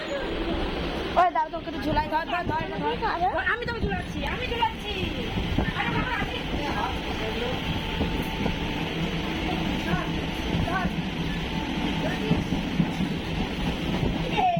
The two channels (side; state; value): both; identical; correlation 1.00